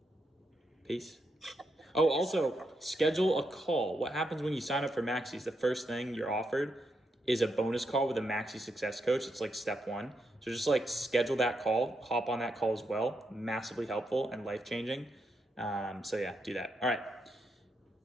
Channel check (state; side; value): normal; both; correlation 0.81